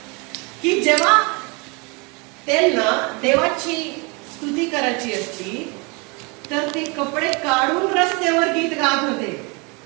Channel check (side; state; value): left; quieter; 29.7 dB